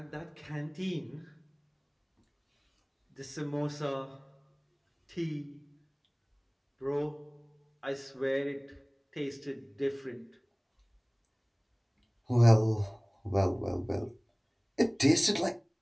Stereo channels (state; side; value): identical; both; correlation 1.00